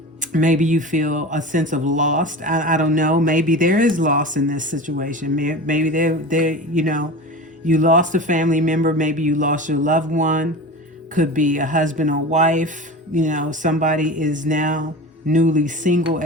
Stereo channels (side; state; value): both; normal; correlation 0.31